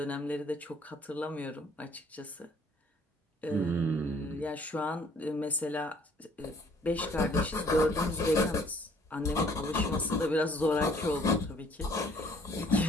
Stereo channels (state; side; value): normal; both; correlation 0.59